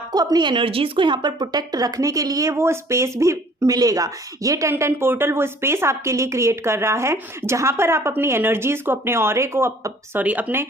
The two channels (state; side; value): normal; both; correlation 0.54